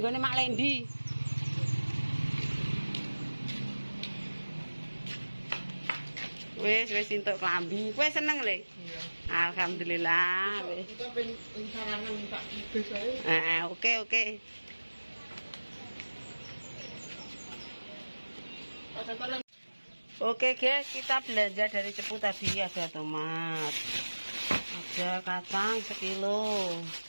gone Mak Lendi. Wis entuk klambi. Kowe seneng le? Iya. Alhamdulillah. Wis. Kita pengen saranan minta bebas ae. Oke. Oke guys, kita belanja dari Cepu tadi. Ada tomat, ada kacang sekilo,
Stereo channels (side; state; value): both; inverted; correlation -1.00